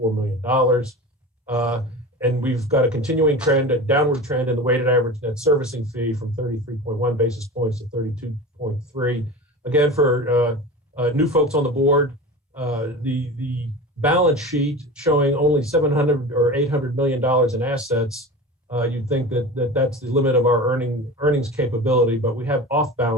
million. And we've got a continuing trend, a downward trend in the weighted average net servicing fee from 33.1 basis points to 32.3. Again, for new folks on the board, the balance sheet showing only $700 or $800 million in assets, you'd think that that's the limit of our earnings capability, but we have off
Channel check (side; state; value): both; normal; correlation 0.31